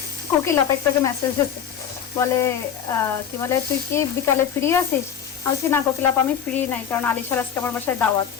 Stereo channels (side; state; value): right; quieter; 8.5 dB